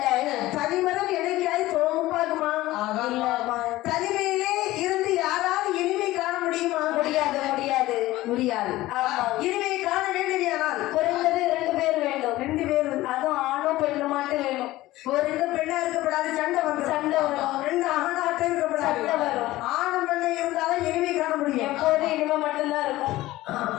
தனிமரம் என்னைக்காவது தோப்பாகுமா? தனிமையிலே இருந்து யாராவது இனிமை காண முடியுமா? முடியாது முடியாது முடியாது. இனிமை காண வேண்டியதானால் குறைந்தது 2 பேர் வேண்டும். 2 பேர், அதுவும் ஆணும் பெண்ணு மட்டும் வேணும். ஒரு 2 பெண்ணா இருக்கப்படாது, சண்டை வரும். 2 ஆணாட்டம் இருக்கப்படாது, சண்டை வரும். ஆணும் பெண்ணை இருந்தாலும் இனிமை காண முடியும். எப்போது இனிமை மட்டும்தான் இருக்கும்.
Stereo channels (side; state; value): right; quieter; 17.1 dB